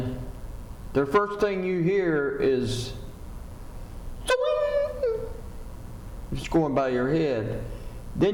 the first thing you hear is, it's going by your head.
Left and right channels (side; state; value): both; identical; correlation 1.00